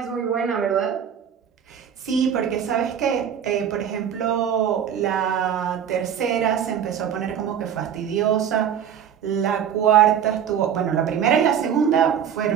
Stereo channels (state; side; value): quieter; left; 8.7 dB